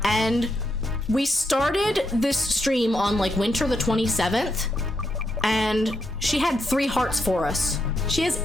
And we started this stream on like winter the 27th, and she had 3 hearts for us. She has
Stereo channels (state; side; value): normal; both; correlation 0.81